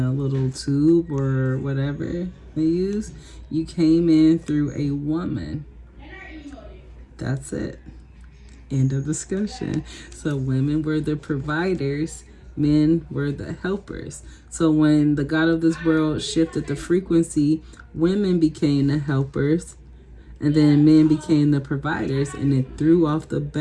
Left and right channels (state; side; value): identical; both; correlation 1.00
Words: little tube or whatever they use. You came in through a woman. That's it. End of discussion. So women were the providers, men were the helpers. So when the God of this world shifted the frequency, women became the helpers, and then men became the providers, and it threw off the